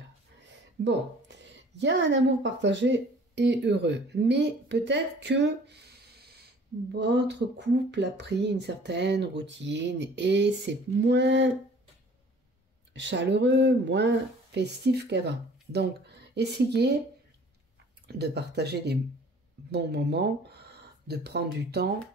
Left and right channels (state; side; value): normal; both; correlation 0.51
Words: Bon, il y a un amour partagé et heureux, mais peut-être que votre couple a pris une certaine routine et c'est moins chaleureux, moins festif qu'avant. Donc, essayez de partager des bons moments, de prendre du temps